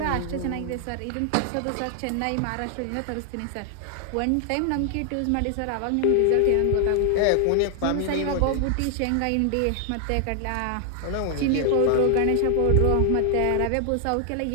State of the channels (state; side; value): different; both; correlation 0.00